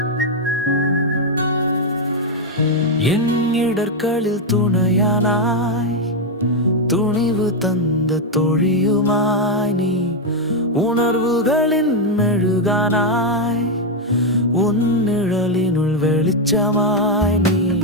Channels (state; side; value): normal; both; correlation 0.03